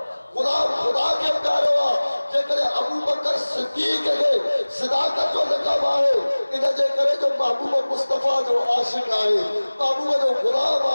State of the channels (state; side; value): inverted; both; correlation -1.00